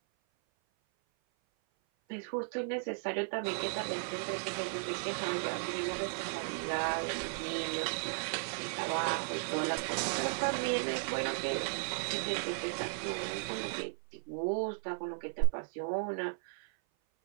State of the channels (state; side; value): silent; left; 54 dB below the other